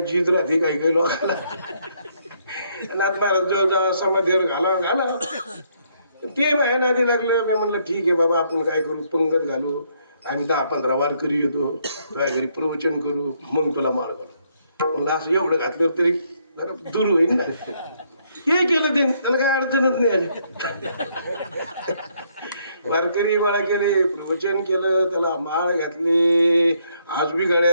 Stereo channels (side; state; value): both; inverted; correlation -0.71